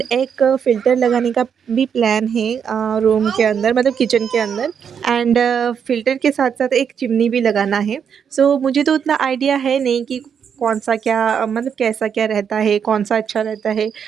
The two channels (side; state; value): left; quieter; 7.4 dB